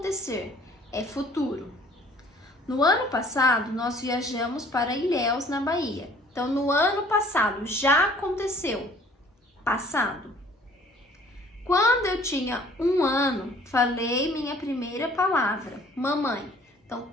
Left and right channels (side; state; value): both; normal; correlation 0.55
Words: É futuro. No ano passado, nós viajamos para Ilhéus, na Bahia. Então, no ano passado, já aconteceu. Passado. Quando eu tinha 1 ano, falei minha primeira palavra, mamãe. Então,